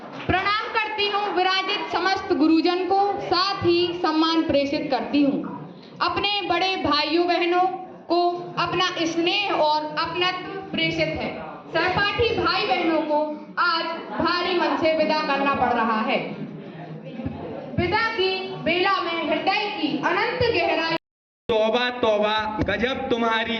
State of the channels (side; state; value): both; identical; correlation 1.00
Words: प्रणाम करती हूँ विराजित समस्त गुरुजन को, साथ ही सम्मान प्रेषित करती हूँ। अपने बड़े भाइयों बहनों को अपना स्नेह और अपनत्व प्रेषित है। सहपाठी भाई बहनों को आज भारी मन से विदा करना पड़ रहा है। विदा की बेला में हृदय की अनंत गहराई। तौबा तौबा, गजब